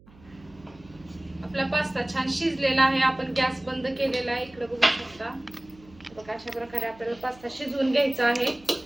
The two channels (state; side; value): noise; right; hum, 25 dB below the sound